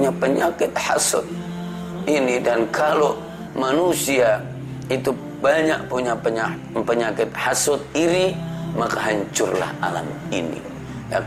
penyakit hasud ini. Dan kalau manusia itu banyak punya penyakit hasud iri, maka hancurlah alam ini, ya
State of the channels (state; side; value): identical; both; correlation 1.00